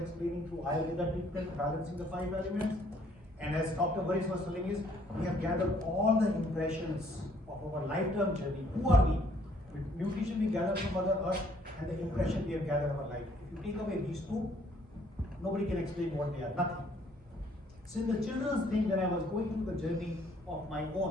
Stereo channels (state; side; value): normal; both; correlation 0.63